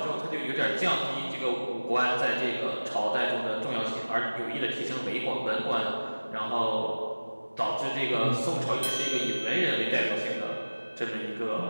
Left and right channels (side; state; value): both; inverted; correlation -1.00